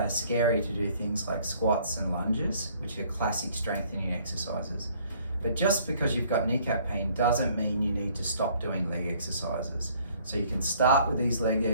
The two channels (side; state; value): both; inverted; correlation -0.59